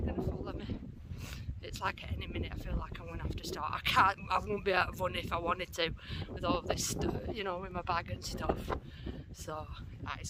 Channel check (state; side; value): identical; both; correlation 1.00